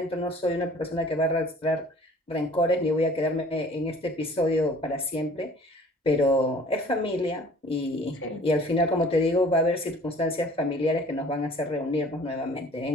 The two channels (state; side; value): normal; both; correlation 0.50